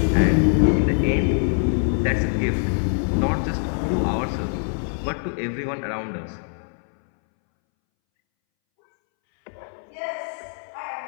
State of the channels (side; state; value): right; silent; 63 dB below the other